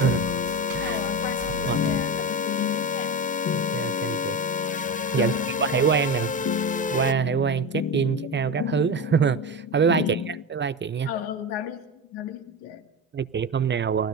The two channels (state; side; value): normal; both; correlation 0.20